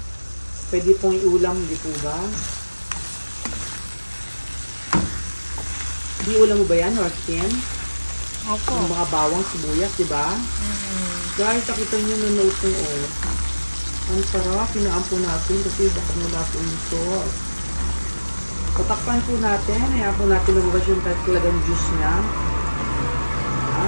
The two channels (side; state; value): both; inverted; correlation -1.00